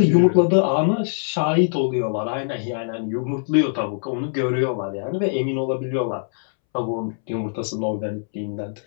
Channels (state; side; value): silent; right; 64 dB below the other